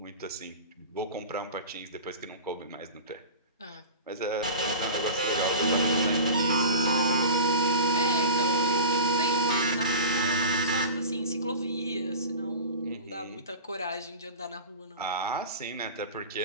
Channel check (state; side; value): inverted; both; correlation -0.33